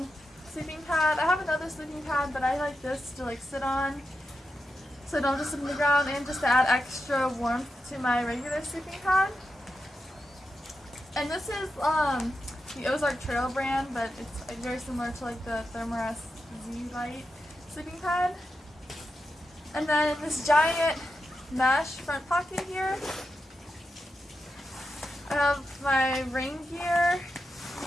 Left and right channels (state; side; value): normal; both; correlation 0.88